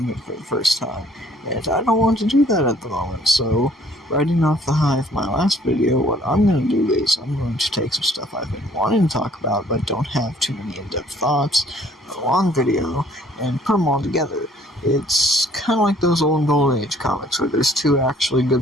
for the first time, and I don't want to do that at the moment, so riding off the high of my last video, what I'm going to do is I'm going to take some stuff I've been wanting to talk about, but don't have too many in-depth thoughts, a long video, and put them all together. It's kind of like those old Golden Age comics where there's two actually good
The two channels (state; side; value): normal; both; correlation 0.59